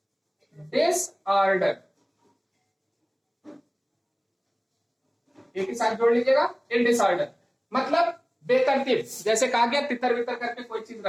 डिसऑर्डर। एक ही साथ जोड़ लीजिएगा, इन डिसऑर्डर मतलब बेतरतीब। जैसे कहा गया तितर बितर करके कोई चीज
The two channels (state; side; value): identical; both; correlation 1.00